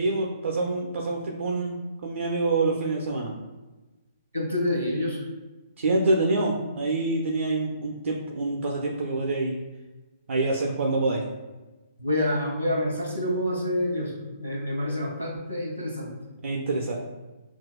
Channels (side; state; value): both; inverted; correlation -0.65